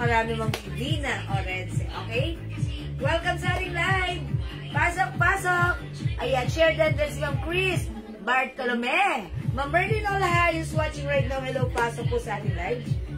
Ma'am Vivina Orense. Okay? Welcome sa ating live. Pasok. Ayan, share din si Ma'am Chris Bartolome. Ma'am Berlin Olaha is watching right now. Hello, pasok po sa ating live.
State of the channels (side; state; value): both; identical; correlation 1.00